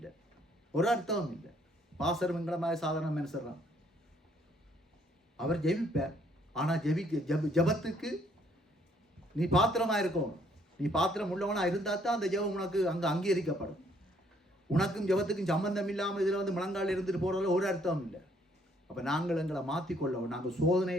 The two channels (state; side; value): normal; both; correlation 0.66